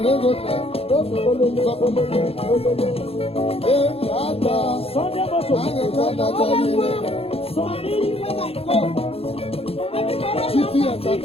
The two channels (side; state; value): right; late; 0.28 ms